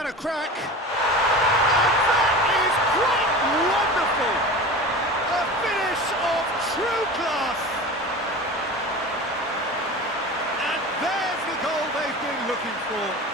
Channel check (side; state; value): both; normal; correlation 0.33